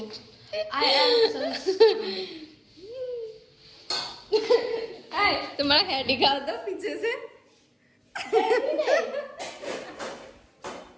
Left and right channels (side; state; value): both; identical; correlation 1.00